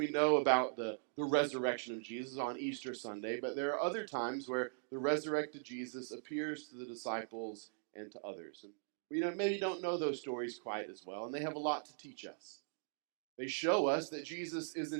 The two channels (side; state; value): left; silent; digital silence